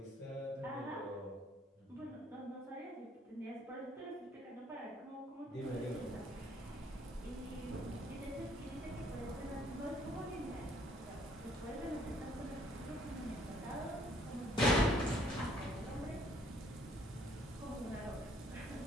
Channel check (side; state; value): both; normal; correlation 0.63